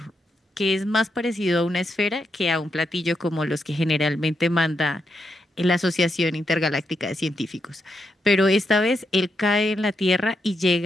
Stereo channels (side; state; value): both; normal; correlation 0.82